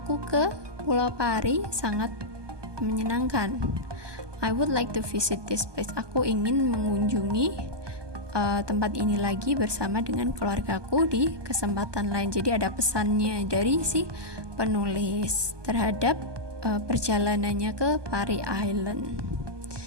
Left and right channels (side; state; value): left; late; 1.2 ms